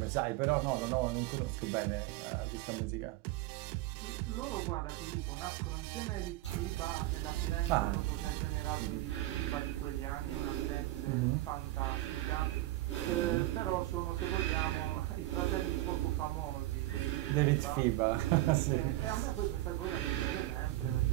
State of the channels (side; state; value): left; quieter; 16.8 dB